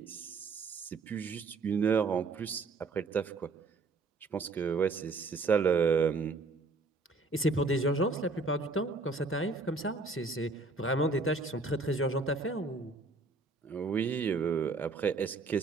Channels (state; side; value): quieter; left; 3.7 dB